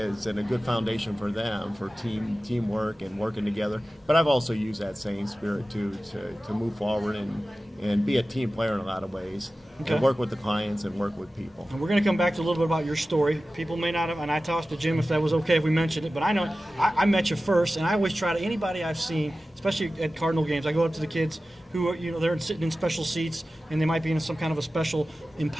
and a good foundation for them for teamwork and working together. But I've also used that same spirit to move forward and be a team player in a lot of ways, Okay. and work with the clients and work with people. And we're going to come back to a little bit about your story. People may not have, and I tossed to Jim if that was okay if we mentioned it, but I know I met you first, and I always try to, anybody I've seen, especially at Cardinal games, I go up to the kids who are, they're sitting in special seats, and they might be in some kind of a special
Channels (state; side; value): normal; both; correlation 0.95